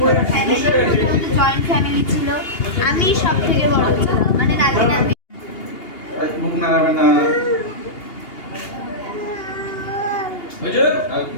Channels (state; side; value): late; right; 2.8 ms